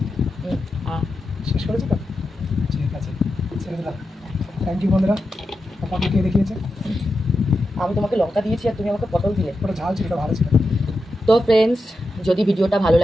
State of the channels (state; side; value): normal; both; correlation 0.89